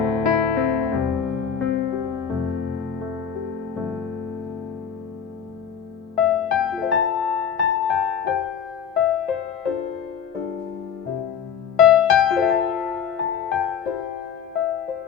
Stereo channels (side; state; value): right; quieter; 7.7 dB